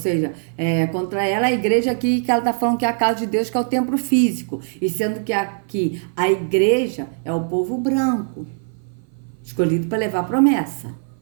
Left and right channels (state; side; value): silent; left; 58 dB below the other